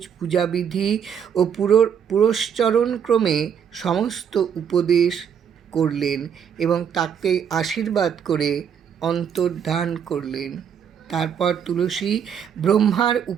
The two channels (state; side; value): quieter; left; 7.9 dB